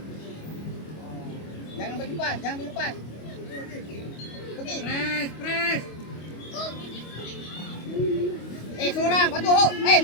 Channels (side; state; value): right; late; 25 ms